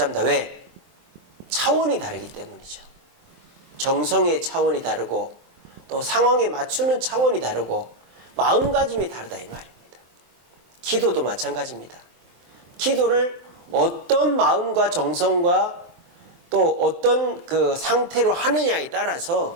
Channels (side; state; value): left; late; 23 ms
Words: 왜? 차원이 다르기 때문이죠. 정성의 차원이 다르고 또 상황에 맞추는 차원이 다르고 마음가짐이 다르다 이 말입니다. 기도도 마찬가지입니다. 기도를 어떤 마음과 정성과 또 어떤 그 상태로 하느냐에 따라서